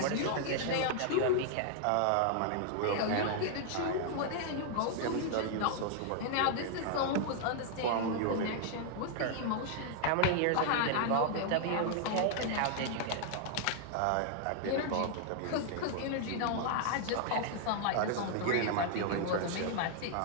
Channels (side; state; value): both; different; correlation -0.01